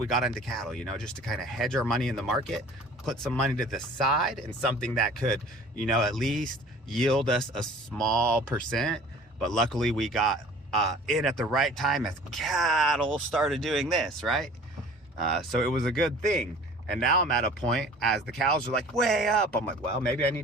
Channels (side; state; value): both; normal; correlation 0.47